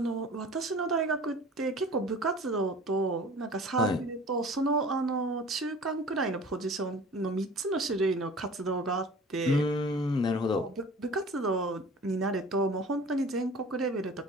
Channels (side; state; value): both; normal; correlation 0.43